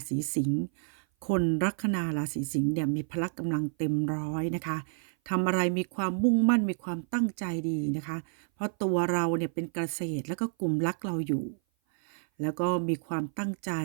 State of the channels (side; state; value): left; silent; 56 dB below the other